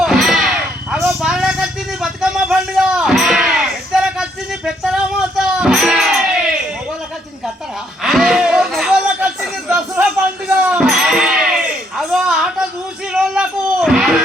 అగో బాలకు వచ్చింది బతుకమ్మ పండుగ, పెద్దలకు వచ్చింది పెత్తనమాత, మొగోళ్ళకి వచ్చింది కత్తరా, మొగోళ్ళకి వచ్చింది దసరా పండుగ. అగో ఆట చూసి రోజులకు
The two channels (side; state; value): both; normal; correlation 0.71